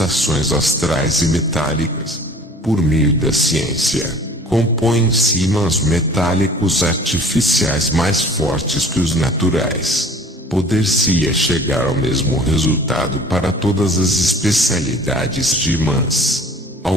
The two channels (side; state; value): both; normal; correlation 0.47